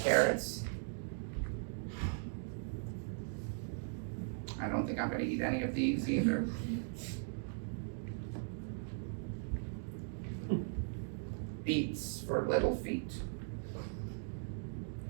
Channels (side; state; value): left; silent; digital silence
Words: I don't think I'm going to eat any of these either. Beets for little feet.